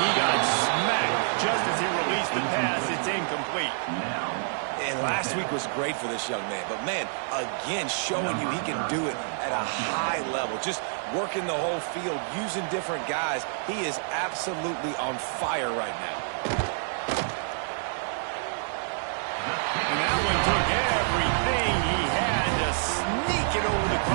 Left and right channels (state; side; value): silent; left; 60 dB below the other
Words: he got smacked just as he released the pass. It's incomplete. And last week was great for this young man. But, man, again, showing you he can do it at a high level. Just working the whole field, using different guys. He is absolutely on fire right now. And that one took everything he had to sneak it over the